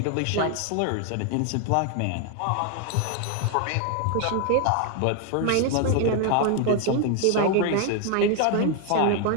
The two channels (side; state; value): both; different; correlation 0.00